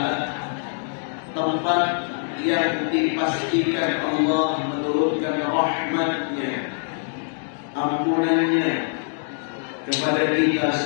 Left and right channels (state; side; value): silent; right; 63 dB below the other